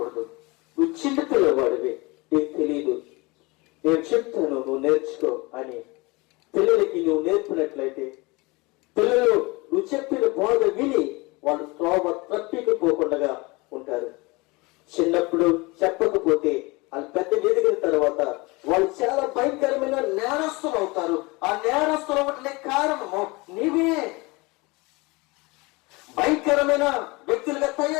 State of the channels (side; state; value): right; quieter; 25.0 dB